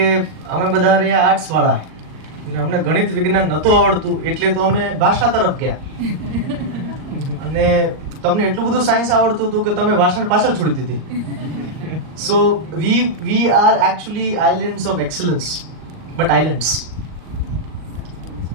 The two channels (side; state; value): left; late; 38 ms